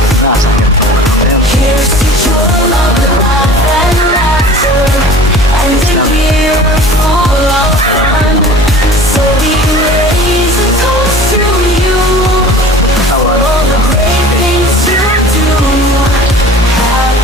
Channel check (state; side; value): normal; both; correlation 0.43